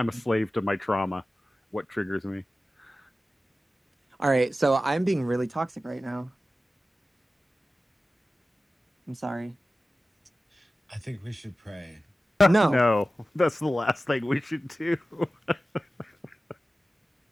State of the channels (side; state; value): both; normal; correlation 0.95